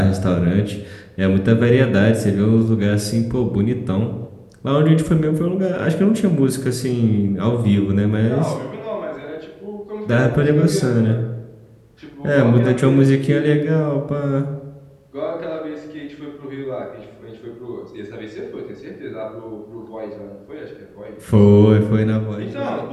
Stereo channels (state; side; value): identical; both; correlation 1.00